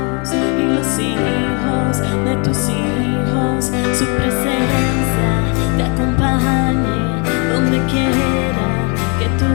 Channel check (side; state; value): right; quieter; 34.4 dB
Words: y los hijos de tus hijos. Su presencia te acompañe donde quiera que tú